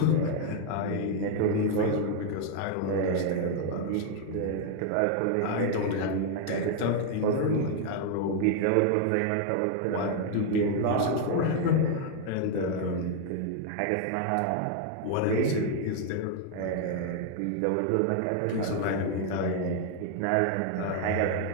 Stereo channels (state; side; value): different; both; correlation 0.00